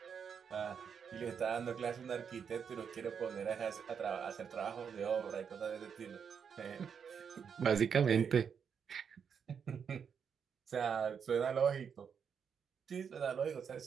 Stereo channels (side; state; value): left; quieter; 7.0 dB